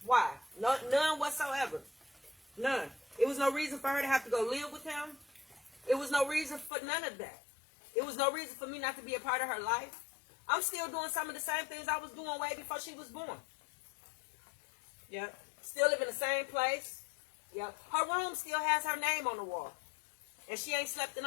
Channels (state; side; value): drops out; right; at 6.7 s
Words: why. None whatsoever. None. It was no reason for her to have to go live with him. It was no reason for none of that. It was no reason for me not to be a part of her life. I'm still doing some of the same things I was doing way before she was born. Yeah. Still live in the same place. Yeah. Her room still has her name on the wall. And she ain't slept in